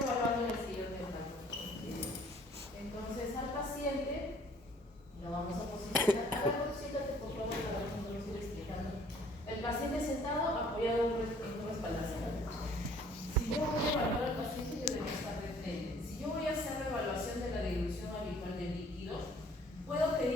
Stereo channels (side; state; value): both; normal; correlation 0.57